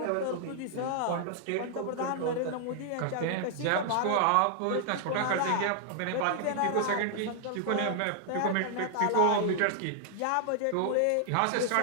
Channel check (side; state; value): both; different; correlation 0.00